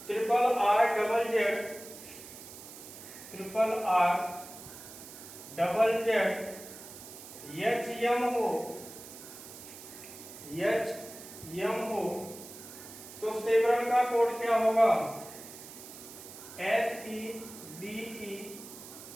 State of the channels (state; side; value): noise; right; hiss, 15 dB below the sound